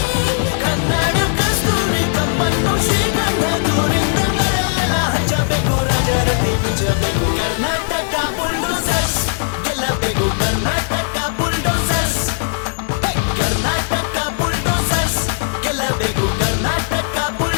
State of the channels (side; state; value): right; silent; 68 dB below the other